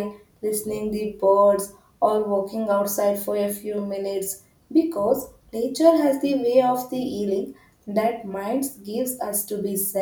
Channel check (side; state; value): both; identical; correlation 1.00